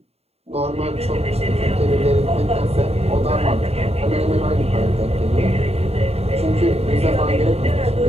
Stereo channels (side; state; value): left; late; 0.30 ms